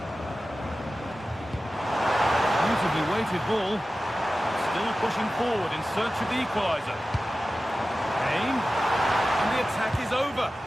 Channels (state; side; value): normal; both; correlation 0.95